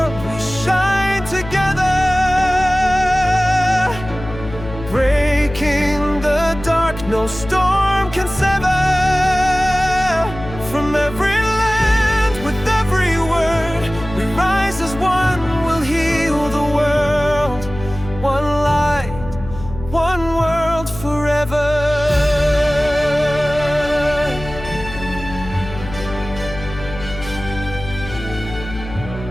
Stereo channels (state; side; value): noise; left; hum, 12 dB below the sound